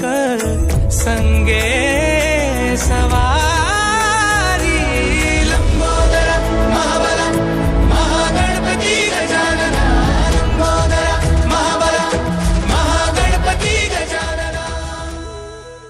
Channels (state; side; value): identical; both; correlation 1.00